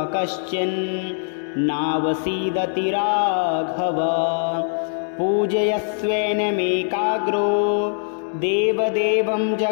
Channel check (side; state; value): right; silent; digital silence